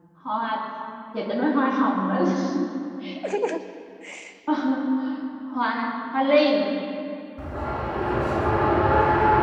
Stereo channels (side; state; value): both; identical; correlation 1.00